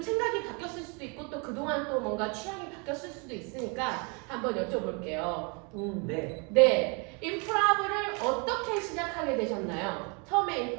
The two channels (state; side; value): quieter; left; 33.0 dB